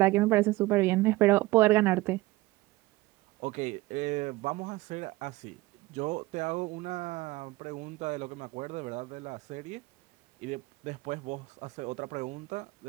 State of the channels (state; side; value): quieter; left; 19.4 dB